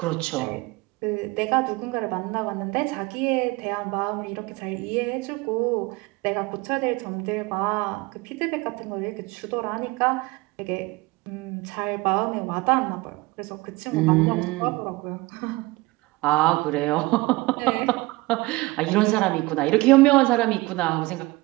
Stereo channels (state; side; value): quieter; left; 22.2 dB